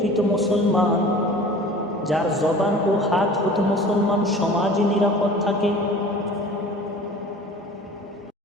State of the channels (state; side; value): normal; both; correlation 0.43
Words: মুসলমান যার জবান ও হাত হতে মুসলমান সমাজে নিরাপদ থাকে।